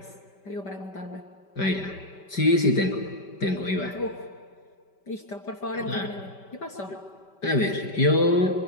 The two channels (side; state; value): right; late; 5.1 ms